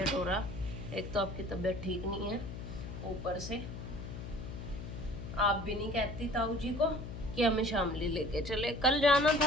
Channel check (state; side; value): noise; left; hum, 8 dB below the sound